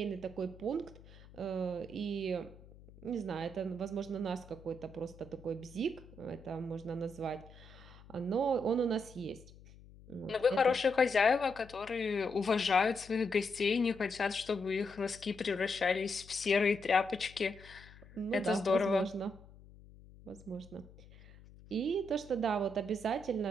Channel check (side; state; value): left; noise; hum, 21 dB below the sound